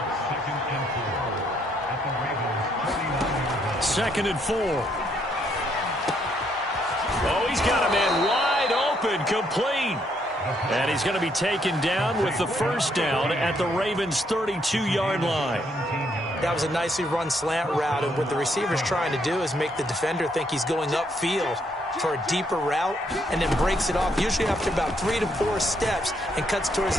Second and 4. Oh, he's got a man wide open, complete. And he's going to be taken down with the first down at the Ravens' 32-yard line. That was a nicely run slant route, and what the receiver's trying to do is make the defender think he's going upfield for a deeper route and then breaks it off, usually after about 3 to 4 steps, and cuts towards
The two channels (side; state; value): both; normal; correlation 0.72